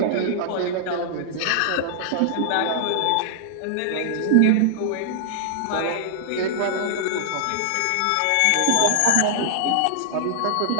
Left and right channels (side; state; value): both; different; correlation -0.01